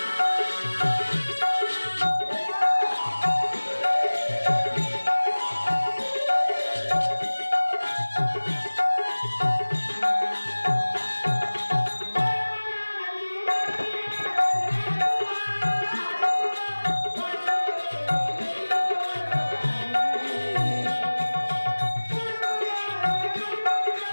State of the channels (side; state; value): both; inverted; correlation -1.00